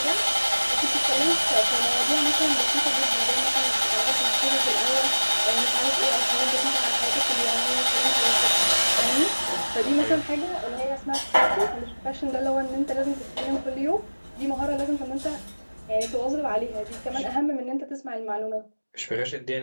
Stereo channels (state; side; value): inverted; both; correlation -1.00